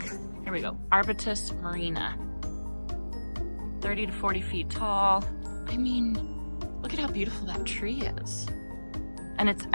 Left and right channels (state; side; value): inverted; both; correlation -1.00